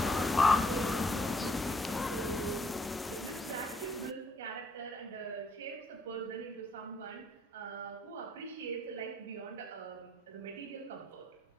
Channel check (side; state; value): both; normal; correlation 0.68